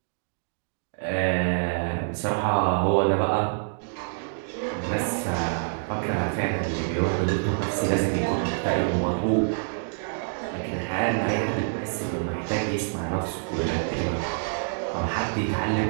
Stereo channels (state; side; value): silent; left; digital silence